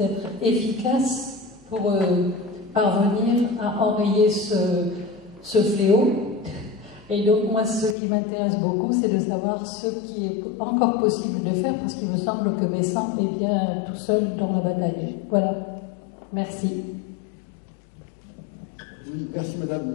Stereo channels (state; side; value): drops out; right; at 8.0 s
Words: être efficace pour parvenir à enrayer ce fléau. Et donc moi, ce qui m'intéresse beaucoup, c'est de savoir ce qui est encore possible de faire, parce qu'il me semble que Bessan est bien tout seul dans la bataille. Voilà. Merci. Oui, merci